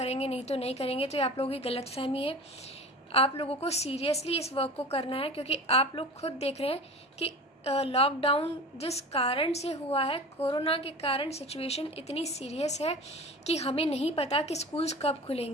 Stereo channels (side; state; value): both; normal; correlation 0.35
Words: नहीं तो नहीं करेंगे, तो ये आप लोगों की गलतफहमी है। आप लोगों को सीरियसली इस वर्क को करना है क्योंकि आप लोग खुद देख रहे हैं कि लॉकडाउन जिस कारण से हुआ है, कोरोना के कारण सिचुएशन इतनी सीरियस है कि हमें नहीं पता कि स्कूल्स कब